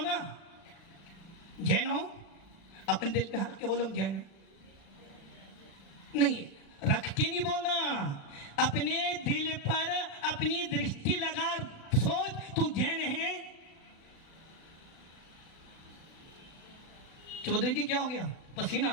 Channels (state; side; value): late; right; 36 ms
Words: जैन हो? अपने दिल पे हट के बोलो जैन है। नहीं, रख के नहीं बोलना, अपने दिल पर अपनी दृष्टि लगा सोच, तू जैन है। चौधरी जी क्या हो गया? पसीना